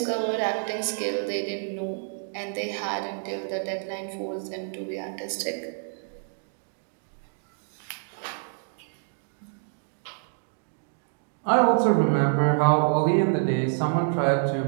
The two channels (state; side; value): silent; left; digital silence